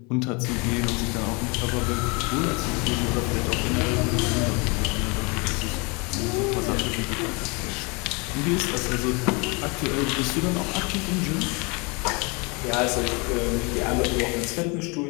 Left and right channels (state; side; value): quieter; right; 30.0 dB